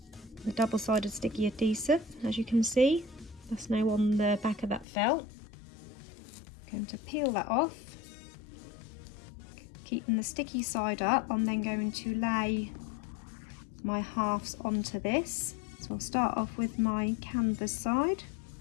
double-sided sticky adhesive. As you can see, that's now on the back of that felt. I'm going to peel that off. Keeping the sticky side up, I'm then going to lay my halves onto this. So I'll start off with my canvas side.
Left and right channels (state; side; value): drops out; right; at 4.9 s